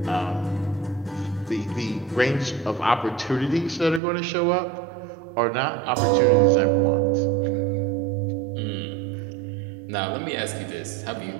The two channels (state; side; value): drops out; left; at 4.0 s